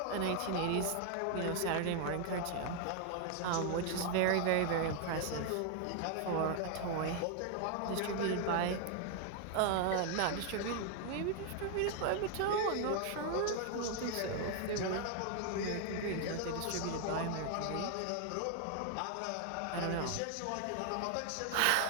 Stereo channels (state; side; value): different; both; correlation 0.00